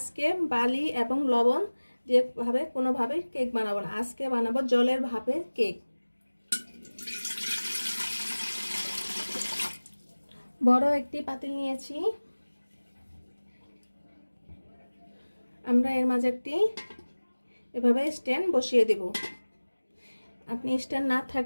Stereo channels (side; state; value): both; inverted; correlation -1.00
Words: বালি এবং লবণ দিয়ে কোনোভাবে কেক বানাবো না। আজকে বানাবো জলের ভাপে কেক। বড় একটি পাতিল নিয়েছি। আমরা এর মাঝে একটি এভাবে স্ট্যান্ড বসিয়ে দেব। আপনি স্ট্যান্ড না